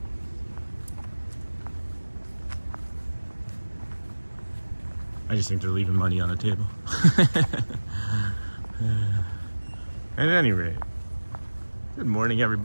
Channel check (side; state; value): both; inverted; correlation -1.00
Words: I just think they're leaving money on the table. At any rate, good morning,